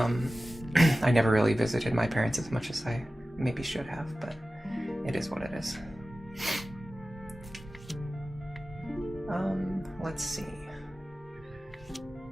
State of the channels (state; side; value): normal; both; correlation 0.96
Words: I never really visited my parents as much as I maybe should have, but it is what it is. Let's see.